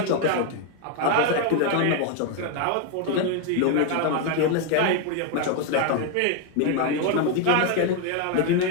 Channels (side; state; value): both; different; correlation 0.01